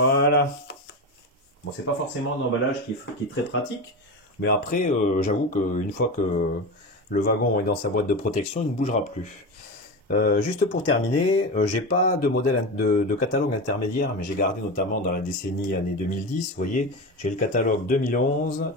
Bon, c'est pas forcément un emballage qui est très pratique, mais après, j'avoue qu'une fois que le wagon est dans sa boîte de protection, il ne bougera plus. Juste pour terminer, j'ai pas de modèle de catalogue intermédiaire, mais j'ai gardé notamment dans la décennie année 2010. Vous voyez, j'ai le catalogue 2011,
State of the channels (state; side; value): normal; both; correlation 0.22